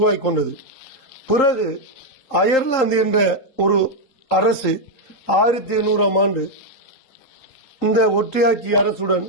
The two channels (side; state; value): right; late; 3.8 ms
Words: கொண்டது. பிறகு அயர்லாந்து என்ற ஒரு அரசு 1800ஆம் ஆண்டு இந்த ஒற்றையாட்சி அரசுடன்